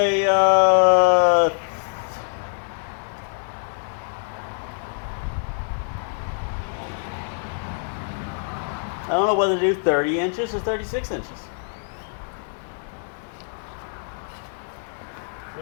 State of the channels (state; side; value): silent; right; 61 dB below the other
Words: I don't know whether to do 30 inches or 36 inches.